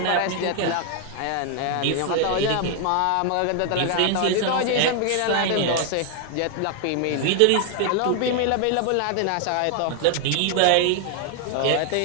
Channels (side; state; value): both; different; correlation 0.00